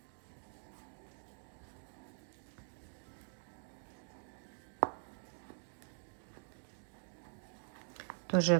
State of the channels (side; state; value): left; silent; digital silence